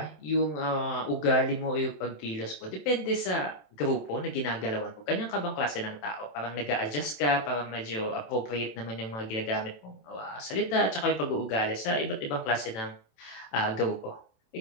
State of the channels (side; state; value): right; late; 27 ms